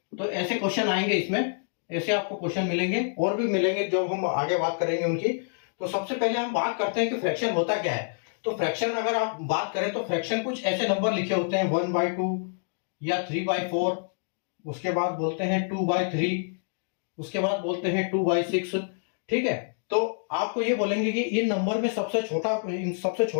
तो ऐसे क्वेश्चन आएंगे इसमें, ऐसे आपको क्वेश्चन मिलेंगे और भी मिलेंगे जब हम आगे बात करेंगे उनकी। तो सबसे पहले हम बात करते हैं कि फ्रैक्शन होता क्या है। तो फ्रैक्शन अगर आप बात करें तो फ्रैक्शन कुछ ऐसे नंबर लिखे होते हैं 1/2 या 3/4, उसके बाद बोलते हैं 2/3, उसके बाद बोलते हैं 2/6, ठीक है। तो आपको ये बोलेंगे कि इन नंबर में सबसे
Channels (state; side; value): silent; right; digital silence